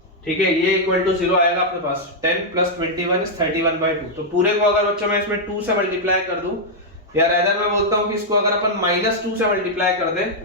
ठीक है, ये इक्वल टू 0 आएगा अपने पास। 10 plus 21 is 31/2। तो पूरे को अगर बच्चों मैं इसमें 2 से मल्टीप्लाई कर दूं, या रादर मैं बोलता हूं कि इसको अगर अपन -2 से मल्टीप्लाई कर दें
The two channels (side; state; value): both; normal; correlation -0.04